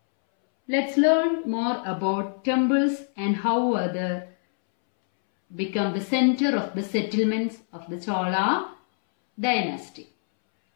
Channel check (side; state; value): right; silent; 62 dB below the other